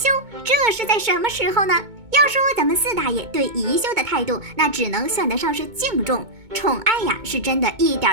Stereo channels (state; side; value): late; left; 2.2 ms